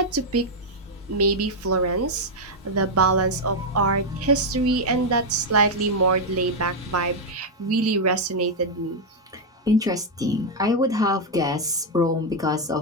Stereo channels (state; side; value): normal; both; correlation 0.00